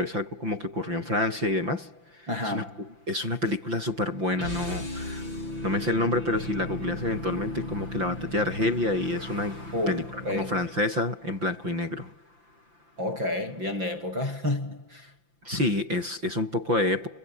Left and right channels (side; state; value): left; late; 5.9 ms